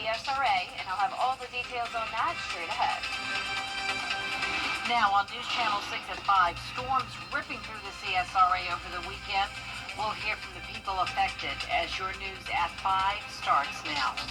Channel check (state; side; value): identical; both; correlation 1.00